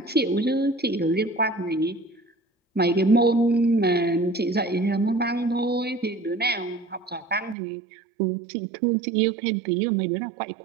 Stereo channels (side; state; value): left; drops out; at 7.6 s